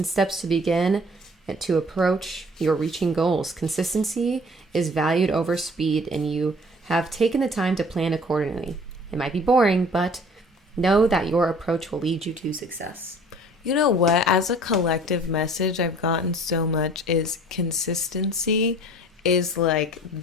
steps to begin and to approach your reaching goals. Consistency is valued over speed, and you have taken the time to plan accordingly. It might be boring, but know that your approach will lead you to success. You know what? As a collective message I've gotten so much is consistency is like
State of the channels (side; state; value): both; normal; correlation 0.50